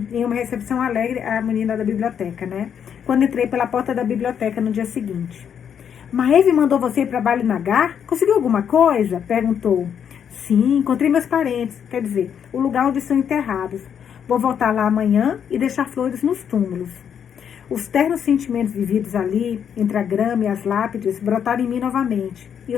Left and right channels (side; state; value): right; quieter; 8.2 dB